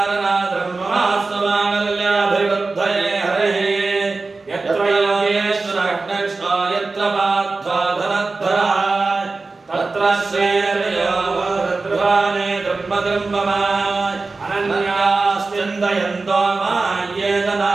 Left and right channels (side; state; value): left; quieter; 3.8 dB